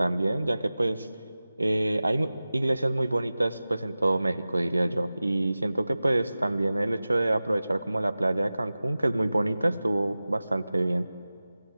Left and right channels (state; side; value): inverted; both; correlation -0.96